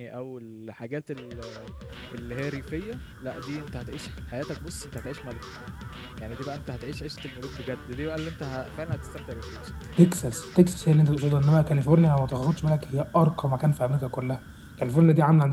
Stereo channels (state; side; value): identical; both; correlation 1.00